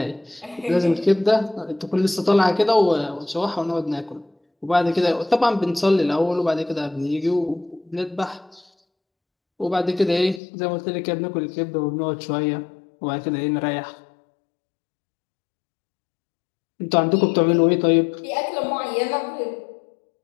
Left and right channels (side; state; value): right; drops out; at 10.4 s